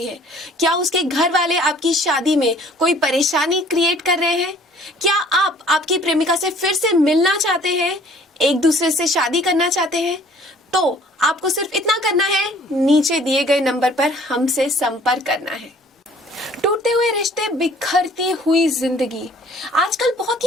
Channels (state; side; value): normal; both; correlation 0.55